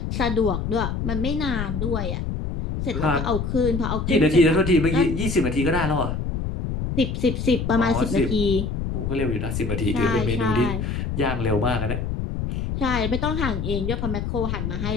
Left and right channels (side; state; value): left; noise; rumble, 3 dB below the sound